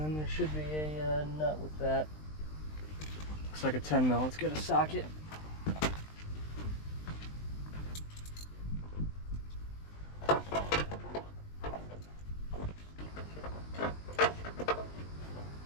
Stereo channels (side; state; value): right; late; 20 ms